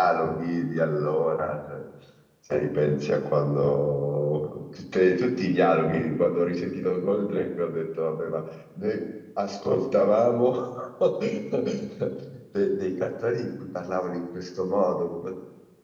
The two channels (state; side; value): identical; both; correlation 1.00